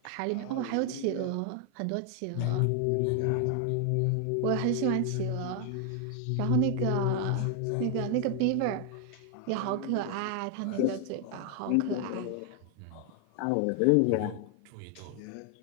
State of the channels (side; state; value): both; different; correlation 0.00